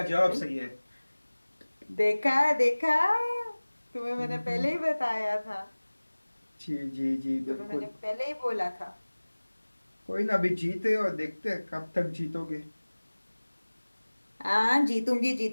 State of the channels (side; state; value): both; inverted; correlation -1.00